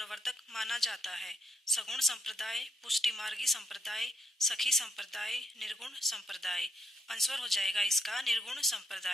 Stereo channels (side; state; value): both; normal; correlation 0.78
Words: माना जाता है। सगुण संप्रदाय, पुष्टि मार्गी संप्रदाय, सखी संप्रदाय, निर्गुण संप्रदाय। आंसर हो जाएगा इसका निर्गुण